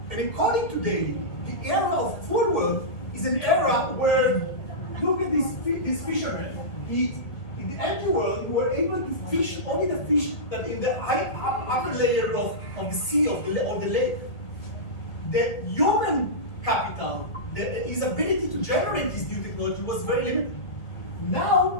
And according to Daly, the era of full world is an era where, look at this fisherman. In the empty world, we were able to fish only the fish that in the upper layer of the sea or the lake. The human capital, his ability to generate this new technology was very limited.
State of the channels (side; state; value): right; late; 1.8 ms